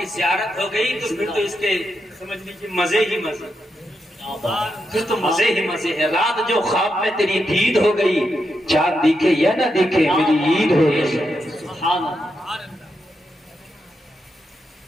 زیارت ہو گئی تو پھر تو اس کے سمجھ لیجیے مزے ہی مزے، پھر تو مزے ہی مزے ہے۔ رات جو خواب میں تیری دید ہو گئی، چاند دیکھے یا نہ دیکھے میری عید ہو گئی۔ سبحان اللہ۔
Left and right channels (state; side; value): normal; both; correlation 0.84